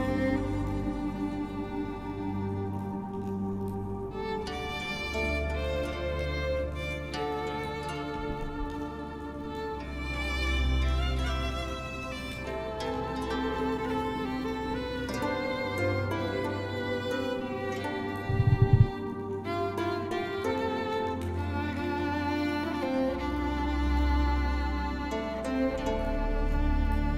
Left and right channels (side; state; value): both; identical; correlation 1.00